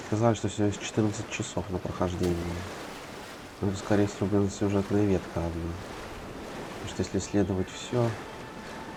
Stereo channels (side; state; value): both; identical; correlation 1.00